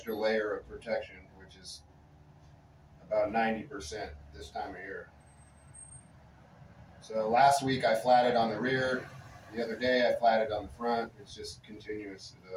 layer of protection, which is about 90% this time of year. So last week I flatted on the rear. The other day I flatted on the front. It's just continuous. It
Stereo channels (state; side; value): identical; both; correlation 1.00